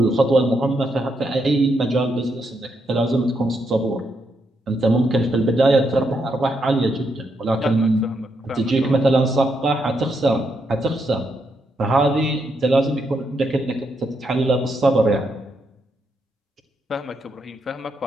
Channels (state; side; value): normal; both; correlation 0.79